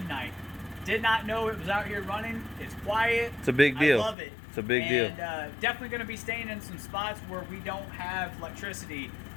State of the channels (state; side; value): drops out; right; at 4.2 s